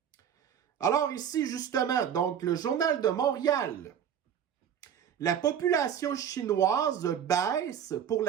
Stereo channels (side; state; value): left; quieter; 8.8 dB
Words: Alors ici, justement, donc le Journal de Montréal. La population chinoise baisse pour